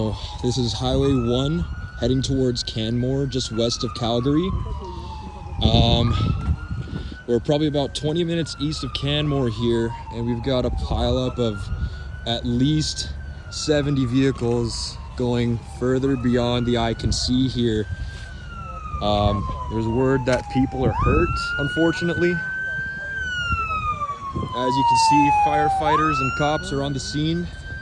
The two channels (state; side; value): identical; both; correlation 1.00